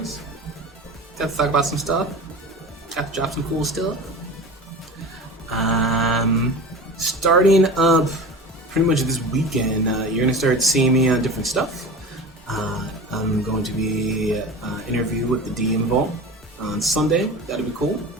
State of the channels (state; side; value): normal; both; correlation 0.33